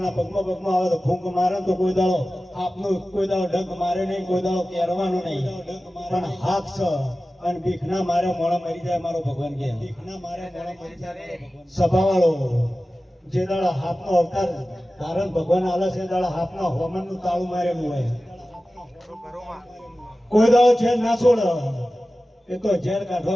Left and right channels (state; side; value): normal; both; correlation 0.95